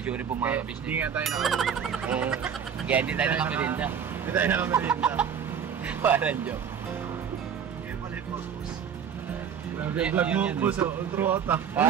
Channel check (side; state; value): left; quieter; 7.7 dB